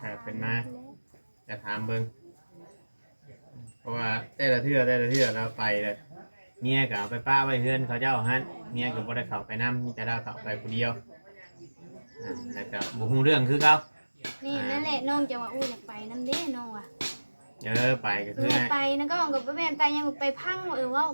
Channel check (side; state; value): both; inverted; correlation -1.00